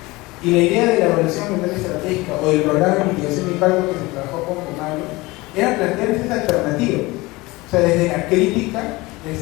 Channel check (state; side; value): quieter; right; 21.9 dB